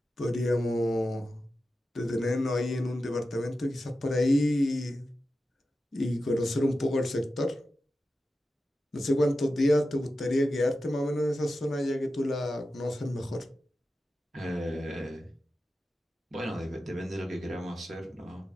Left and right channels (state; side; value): normal; both; correlation 0.92